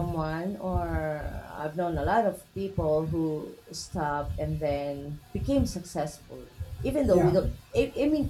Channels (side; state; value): both; identical; correlation 1.00